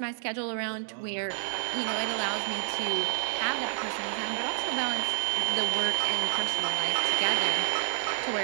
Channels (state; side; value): silent; left; digital silence